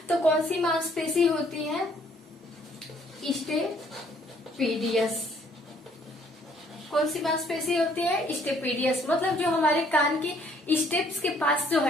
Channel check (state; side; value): normal; both; correlation 0.63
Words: तो कौन सी मांसपेशी होती है, स्टेपीडियस। कौन सी मांसपेशी होती है, स्टेपीडियस। मतलब जो हमारे कान की स्टेप्स के पास जो